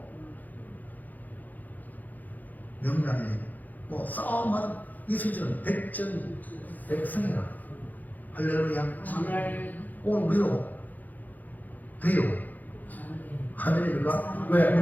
명량에 뭐 싸움하는 이수희는 백전백승이라 할렐루야. 오늘 우리도 돼요. 아멘입니까? 왜?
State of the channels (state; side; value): late; right; 0.082 ms